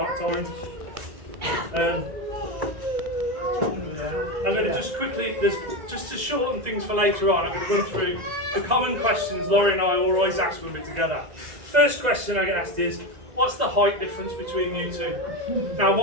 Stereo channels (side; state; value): left; late; 2.0 ms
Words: times. I'm going to just quickly, just to shorten things for later on, I'm going to run through the common questions Laurie and I always ask when we're together. First question I get asked is, what's the height difference between you two? Now,